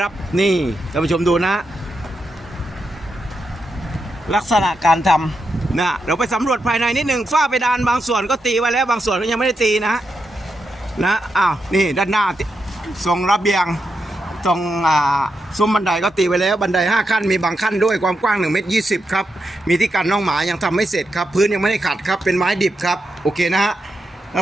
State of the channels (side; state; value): both; normal; correlation 0.85